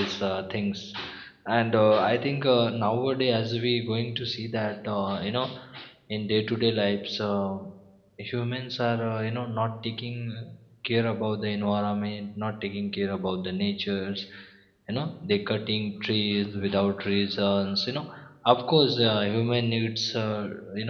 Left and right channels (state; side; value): identical; both; correlation 1.00